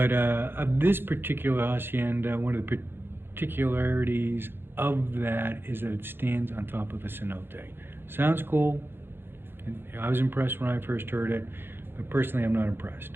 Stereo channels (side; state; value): left; late; 0.10 ms